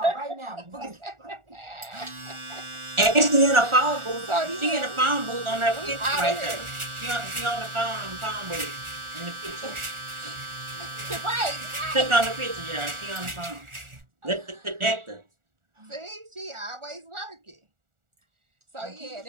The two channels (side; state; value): left; late; 1.4 ms